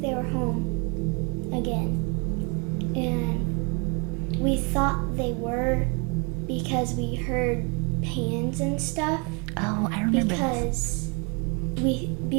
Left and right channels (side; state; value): left; quieter; 31.6 dB